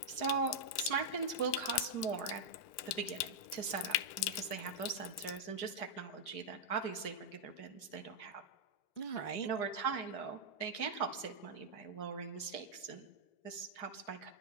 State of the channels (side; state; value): right; late; 4.8 ms